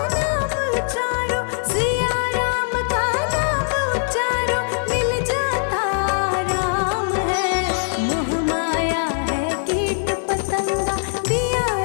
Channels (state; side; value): silent; right; 65 dB below the other